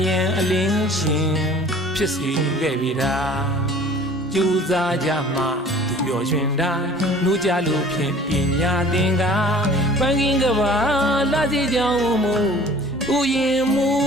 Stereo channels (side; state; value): both; normal; correlation 0.48